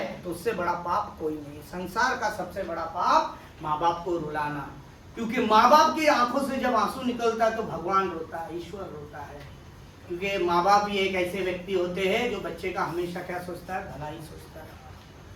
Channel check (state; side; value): identical; both; correlation 1.00